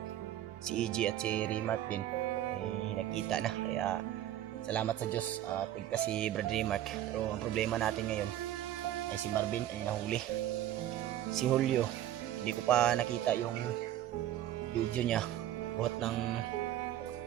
si EG at si Remark din ay nakita na. Kaya salamat sa Diyos at si Brad Remark. Pero ang problema natin ngayon ay si Marvin ay nahuli. Si Julio, hindi ko pa nakita yung video niya. Buhat ng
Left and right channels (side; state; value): left; quieter; 12.4 dB